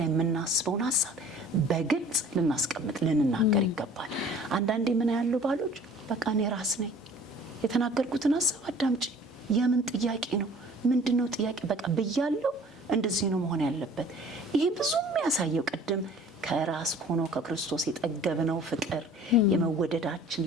የምናስበውን ሐሳብ በግልጽ ልናስቀምጥ ልንናገር ይገባል። አንዳንዴ ምን ያለው ባሎች በቃ እኔ ራስ ነኝ የተናገርኩትን ሐሳብ አዳምጪ፣ የምን ጥያቄ ነው ምንድነው ጥያቄ በቃ ብያለሁ፣ እንደዚህ ነው መሆን ያለበት። ይሄ ብዙ የሚያሳየው ቅድም ከራስ ሆኖ ከክርስቶስ የጠገብነው ፍቅር የመወደዳችን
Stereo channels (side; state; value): both; normal; correlation 0.49